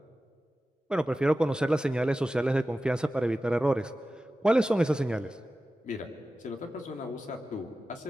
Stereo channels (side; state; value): both; normal; correlation 0.94